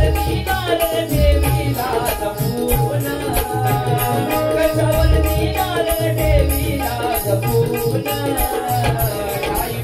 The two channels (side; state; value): both; identical; correlation 1.00